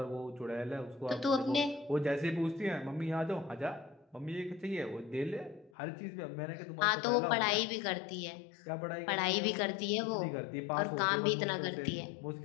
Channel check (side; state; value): right; drops out; at 5.7 s